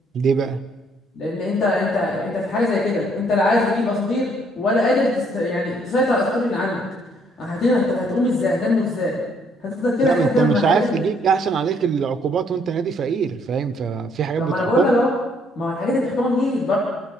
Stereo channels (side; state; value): both; normal; correlation 0.67